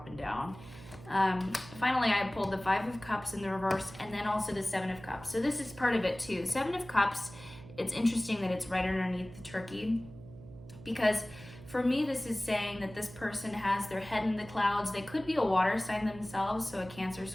down. Finally, I pulled the Five of Cups in the reverse, and then also the Seven of Cups. So this is part of it too. Seven of Cups, it's interesting that it's right underneath the turkey, because for me, this is saying that this person has their head in the clouds. They could be a water sign themselves, so a Cancer,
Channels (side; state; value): right; noise; hum, 17 dB below the sound